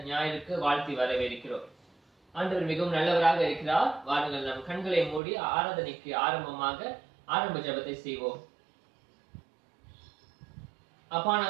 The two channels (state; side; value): drops out; left; at 5.2 s